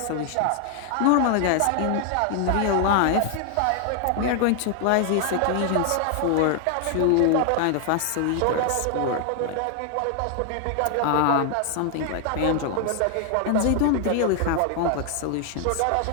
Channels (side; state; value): both; different; correlation 0.00